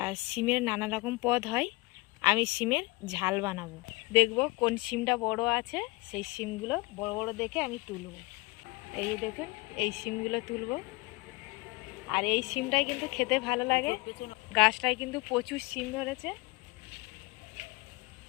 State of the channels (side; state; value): right; quieter; 24.8 dB